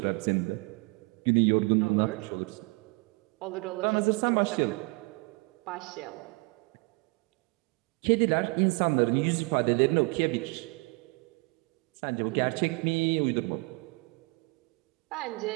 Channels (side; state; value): left; quieter; 28.3 dB